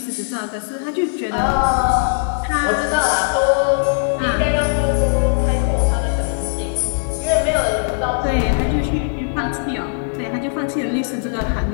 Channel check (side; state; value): right; silent; digital silence